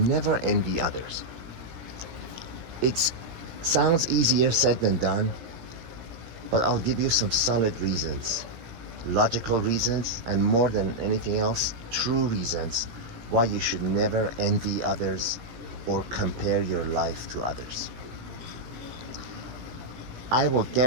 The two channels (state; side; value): late; left; 17 ms